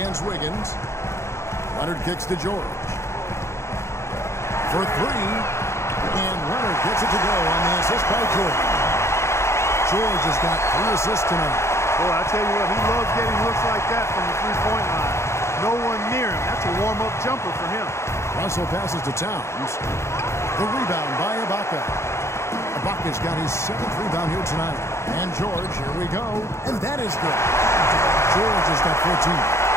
Wiggins. Leonard kicks to George. For 3. And Leonard gets it to go on the assist by George. George has got 3 assists tonight. Boy, I tell you what, he loves getting looks like that from the three-point line. No one near him. That's a warm-up jumper for him. Russell passes to Towns. The rebound by Ibaka. Ibaka's got his 7th rebound here tonight. And George, here we go. And that is good. George has got 14.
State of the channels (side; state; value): right; late; 0.13 ms